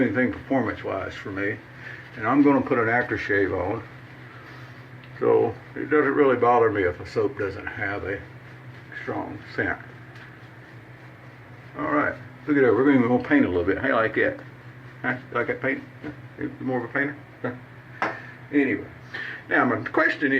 anything performance-wise for me. And I'm going to put an aftershave on. So it doesn't really bother me if a soap doesn't have a strong scent. All right, look at that, we're going to paint a little bit. How you like that? Huh? You like that paint? You more of a painter? Huh? Anyway, now my question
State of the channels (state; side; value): identical; both; correlation 1.00